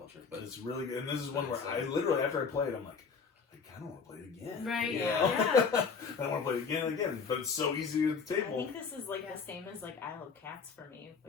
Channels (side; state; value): right; quieter; 5.5 dB